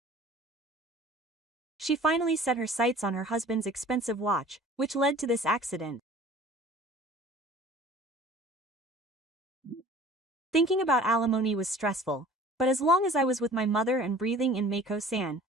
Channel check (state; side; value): normal; both; correlation 0.47